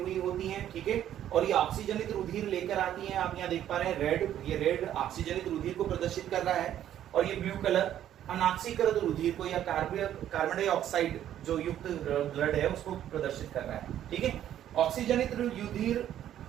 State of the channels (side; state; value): left; quieter; 11.2 dB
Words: होती है, ठीक है, और ये ऑक्सीजनित रुधिर लेकर आती हैं। आप यहाँ देख पा रहे हैं रेड, ये रेड ऑक्सीजनित रुधिर को प्रदर्शित कर रहा है, और ये ब्लू कलर अनाक्सीकृत रुधिर को या कार्बन डाइऑक्साइड जो युक्त ब्लड है उसको प्रदर्शित कर रहा है, ठीक है। ऑक्सीजनित रुधिर